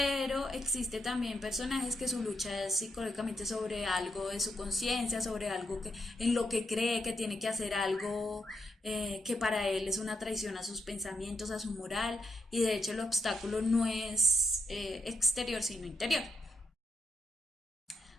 existe también personajes que su lucha es psicológicamente sobre algo de su conciencia, sobre algo en lo que cree que tiene que hacer algo que para él es una traición a sus pensamientos, a su moral, y de hecho el obstáculo no es exterior sino interior.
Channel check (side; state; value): both; normal; correlation 0.81